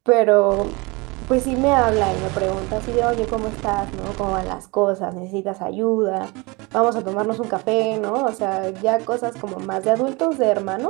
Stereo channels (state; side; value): quieter; left; 26.2 dB